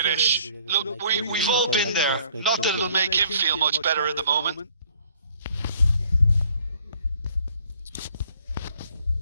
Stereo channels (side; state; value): both; inverted; correlation -0.60